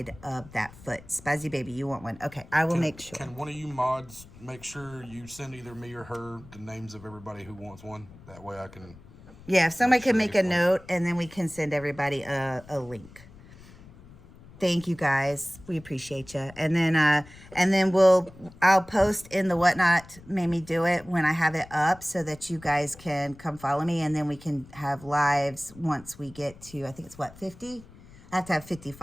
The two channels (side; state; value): left; noise; rumble, 21 dB below the sound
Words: of that foot. Spazzy baby, you want one? Okay, I will make sure. Can one of you mods make sure you send either me or her the names of everybody who wants one? That way I can... Yeah, if somebody can make a note, and then we can send everybody a link. Thank you guys. We appreciate you. And then I'll post in the Whatnot Made Me Do It when I have it up so that you guys can come follow me, and then we can have lives once we get to, I think it's what, 50? I have to have 50